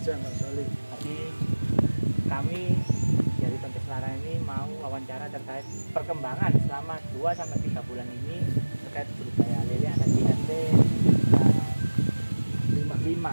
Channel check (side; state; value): both; inverted; correlation -1.00